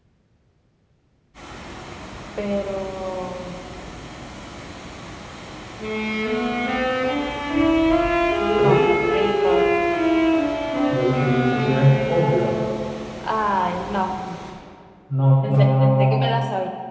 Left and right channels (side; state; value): both; identical; correlation 1.00